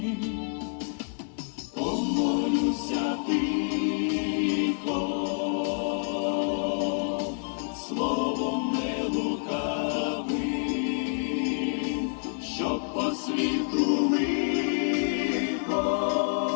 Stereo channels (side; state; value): right; silent; 58 dB below the other